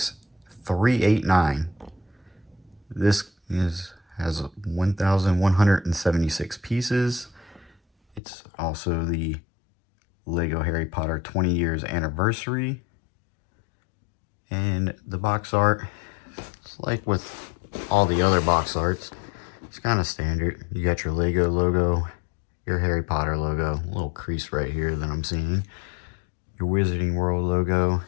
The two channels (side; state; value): right; drops out; at 8.2 s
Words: This has 1,176 pieces. It's also the Lego Harry Potter 20 years anniversary. And the box art, it's like with all the other box arts, it's kind of standard. You got your Lego logo, your Harry Potter logo, a little crease right here that I'm seeing, your Wizarding World logo,